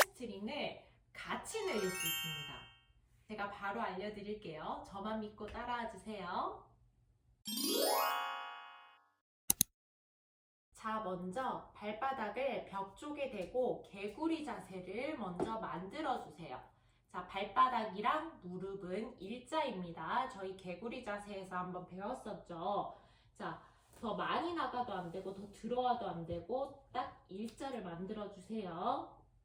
같이 늘릴 수 있습니다. 제가 바로 알려드릴게요. 저만 믿고 따라와 주세요. 자, 먼저 발바닥을 벽 쪽에 대고 개구리 자세를 먼저 만들어 주세요. 자, 발바닥이랑 무릎은 일자입니다. 저희 개구리 자세에서 한번 배웠었죠. 자, 더 많이 나가도 안 되고 더 들어와도 안 되고 딱 일자를 만들어 주세요.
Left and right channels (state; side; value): identical; both; correlation 1.00